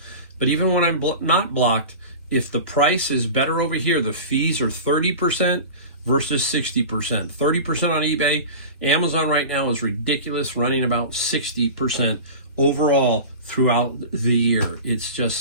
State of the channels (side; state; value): both; inverted; correlation -0.32